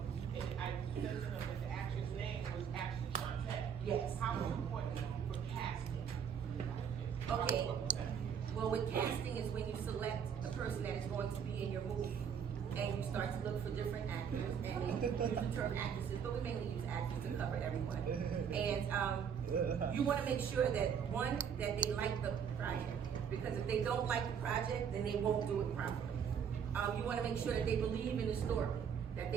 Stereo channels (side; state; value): left; quieter; 7.6 dB